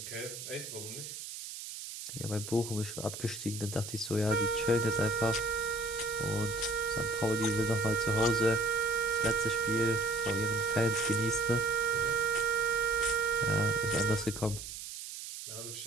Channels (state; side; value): noise; right; hiss, 9 dB below the sound